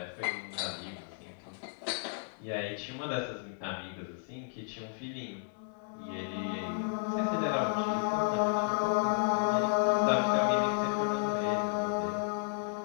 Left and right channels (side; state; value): right; silent; 56 dB below the other